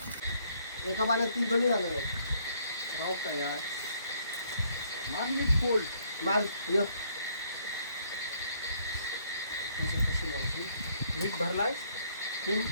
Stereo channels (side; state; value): both; inverted; correlation -0.67